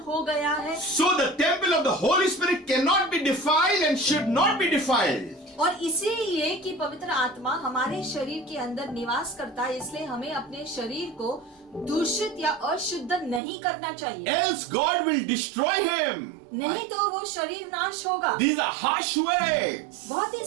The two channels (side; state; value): left; drops out; at 13.4 s